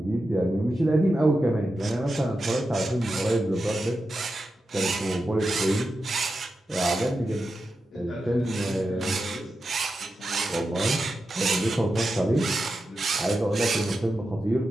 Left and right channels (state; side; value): normal; both; correlation 0.90